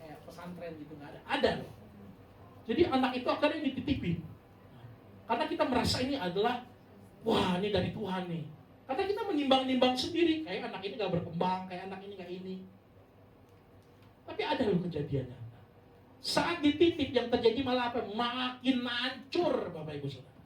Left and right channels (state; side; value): identical; both; correlation 1.00